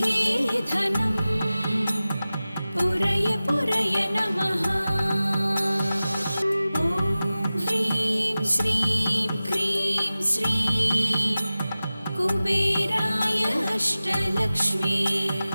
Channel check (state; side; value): inverted; both; correlation -0.96